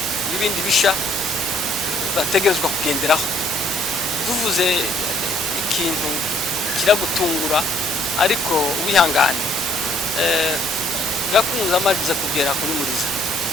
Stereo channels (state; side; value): normal; both; correlation 0.63